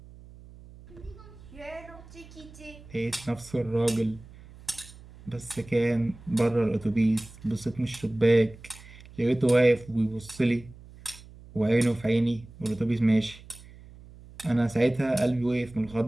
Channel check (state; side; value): noise; right; hum, 20 dB below the sound